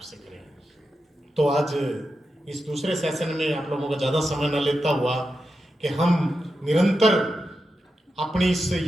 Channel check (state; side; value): normal; both; correlation 0.89